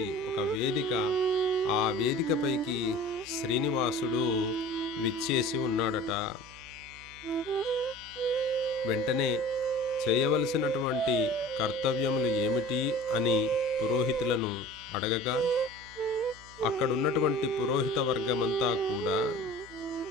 ఒక వేదిక, ఆ వేదికపైకి శ్రీనివాసుడు విచ్చేసి ఉన్నాడట. వెంటనే చేయవలసినటువంటి కర్తవ్యములు ఏమిటి అని పురోహితులను అడగగా, అక్కడున్నటువంటి పురోహిత వర్గమంతా కూడా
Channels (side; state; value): right; noise; hum, 22 dB below the sound